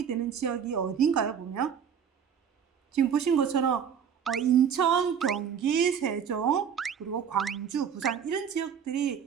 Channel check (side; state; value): left; quieter; 7.7 dB